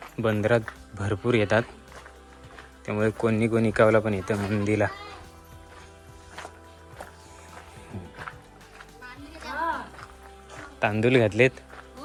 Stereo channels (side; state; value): both; identical; correlation 1.00